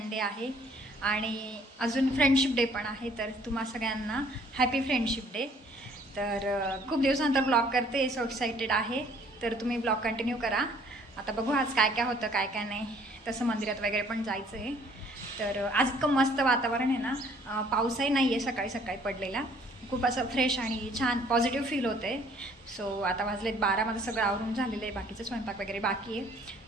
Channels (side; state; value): both; normal; correlation 0.59